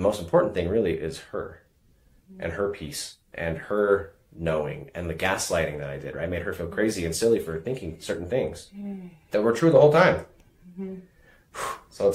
most important thing really is her and her peace and her knowing and the gaslighting that I did, right? I made her feel crazy and silly for thinking certain things that were true the whole time. So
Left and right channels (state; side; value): identical; both; correlation 1.00